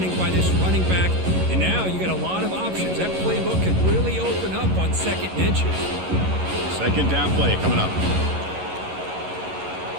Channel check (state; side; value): late; left; 11 ms